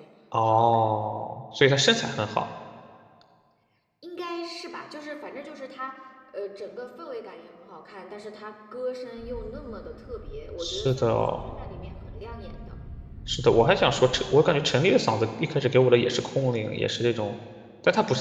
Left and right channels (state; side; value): identical; both; correlation 1.00